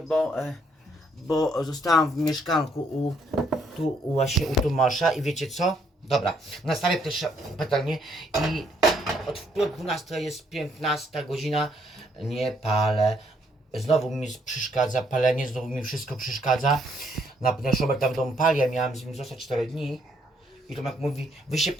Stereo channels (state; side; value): normal; both; correlation 0.70